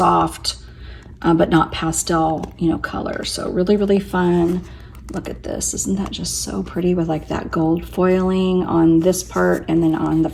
but not pastel, colors. So really, really fun. Look at this. Isn't that just so pretty with like that gold foiling on this part and then on the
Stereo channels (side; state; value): both; identical; correlation 1.00